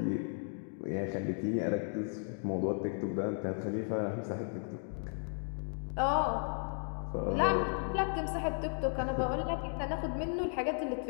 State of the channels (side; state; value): right; silent; 54 dB below the other